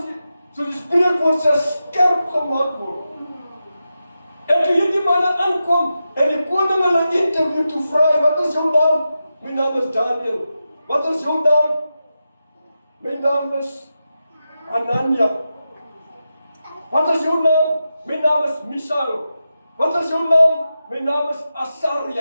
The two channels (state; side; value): inverted; both; correlation -0.90